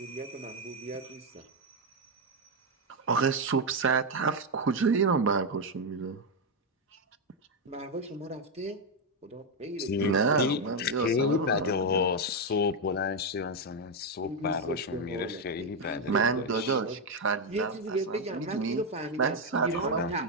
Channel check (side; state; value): both; normal; correlation 0.04